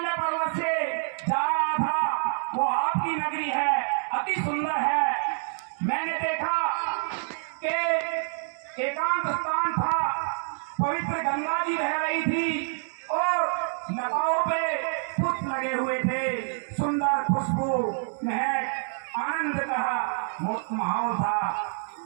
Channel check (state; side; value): silent; left; digital silence